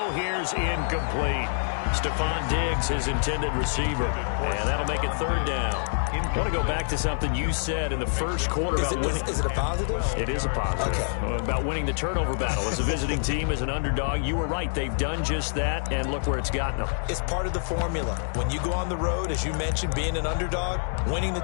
here's incomplete. Stephon Diggs, his intended receiver. And that'll make it 3rd down. I want to go back to something you said in the first quarter about winning. Is it a positive? It is a positive. Okay. About winning the turnover battle. As a visiting team, as an underdog, you were right. They've done just that, and look where it's gotten them. It's part of the formula. When you go on the road, as you mentioned, being an underdog, winning the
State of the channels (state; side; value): silent; right; digital silence